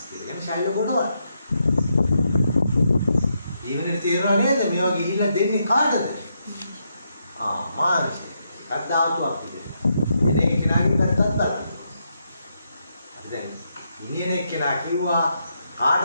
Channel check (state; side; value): inverted; both; correlation -0.80